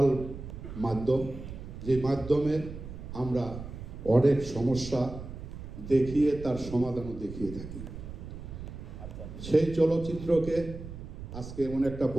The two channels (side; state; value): right; noise; rumble, 11 dB below the sound